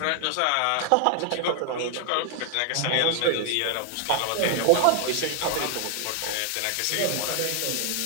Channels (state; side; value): different; both; correlation 0.00